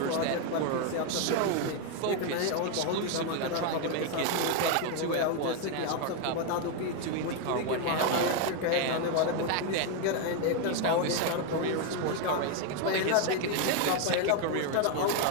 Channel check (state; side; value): different; both; correlation 0.01